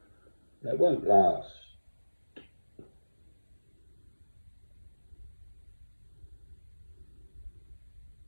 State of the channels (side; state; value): both; inverted; correlation -1.00